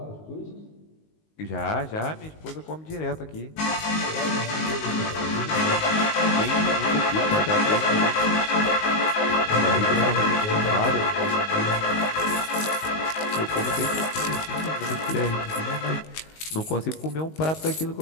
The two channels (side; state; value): right; late; 19 ms